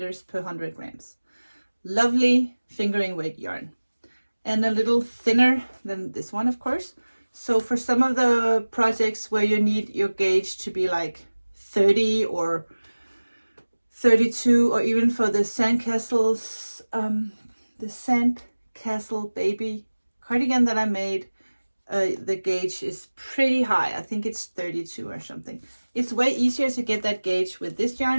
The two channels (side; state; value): both; inverted; correlation -1.00